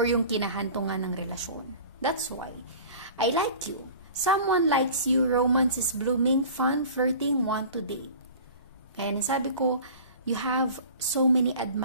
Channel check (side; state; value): both; inverted; correlation -0.41